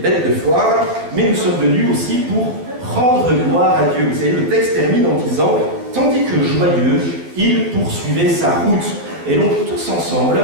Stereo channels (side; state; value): left; late; 12 ms